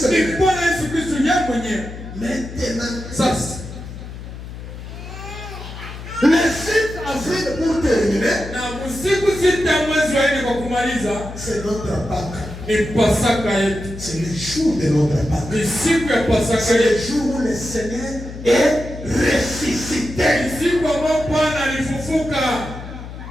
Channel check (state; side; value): noise; left; hum, 11 dB below the sound